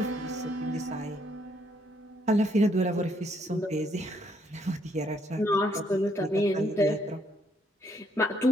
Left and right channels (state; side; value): normal; both; correlation 0.71